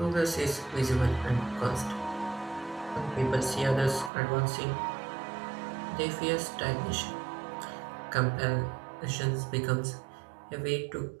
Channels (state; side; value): drops out; left; at 4.1 s